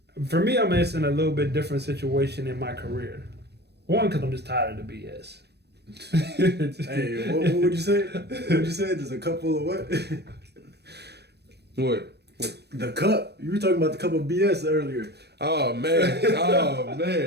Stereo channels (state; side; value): late; left; 0.48 ms